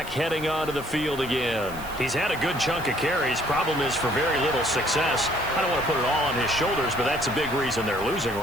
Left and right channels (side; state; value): right; noise; hiss, 17 dB below the sound